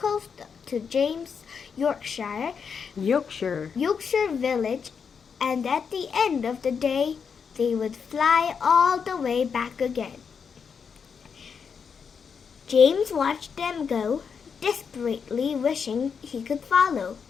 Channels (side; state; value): right; quieter; 6.3 dB